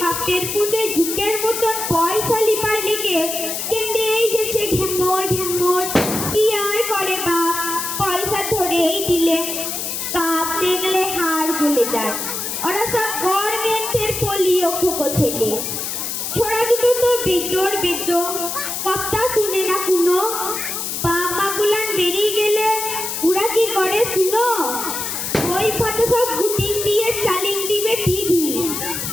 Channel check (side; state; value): left; noise; hiss, 4 dB below the sound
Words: বাপের পুঁতে ঝুঁকের মতন পয়সা লিপার লেগে কেমনে এই গেছে ঘ্যামর। কি আর করে বাপ, পয়সা ধরেই দিলে কাপ দেখলে হাড় গলে যায়। ওরা সব গভর্নমেন্টের পোলিও খোকো ছেলে। ছোড়া দুটো তো বেতর কথা শুনে না কোনো। বাপ মা গুলান বেরিয়ে গেলে ওরা কি করে শুনো, ওই ফাতে সব গুটিং দিয়ে চালিং দিবে টিভি।